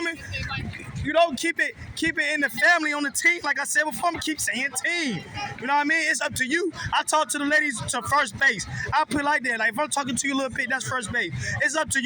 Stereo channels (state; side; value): identical; both; correlation 1.00